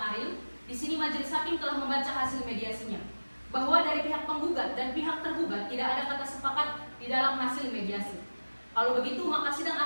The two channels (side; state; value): both; inverted; correlation -1.00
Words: Di sini majelis hakim telah membaca hasil mediasinya, bahwa dari pihak penggugat dan pihak tergugat tidak ada kata sepakat di dalam hasil mediasi. Kalau begitu, maka sidang